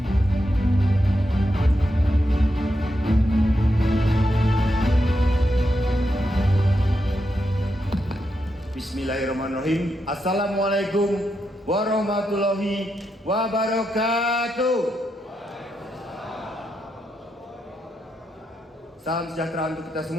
Bismillahirrahmanirrahim. Assalamualaikum warahmatullahi wabarakatuh. Salam sejahtera untuk kita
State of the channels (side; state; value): both; normal; correlation 0.84